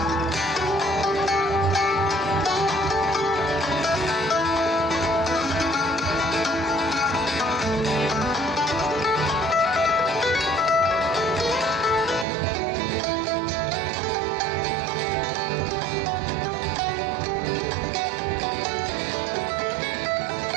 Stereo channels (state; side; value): drops out; left; at 12.2 s